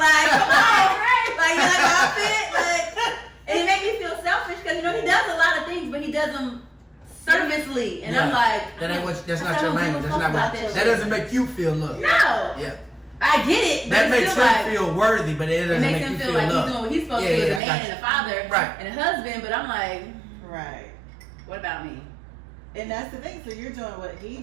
come on, right? Like you like my outfit, like. And it made me feel selfish because, you know, he does a lot of things, but he does them servicely. And I'm like, that's not your language. That's not what, that doesn't make you feel loved. No. Yeah. I get it. But that makes him like, feel worthy, but it doesn't make him you feel feel like loved. he's doing what he's supposed to do as a man and a father and a husband. But I'm like, right. What about me? And that's the thing. So you're doing what he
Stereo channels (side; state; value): left; drops out; at 17.6 s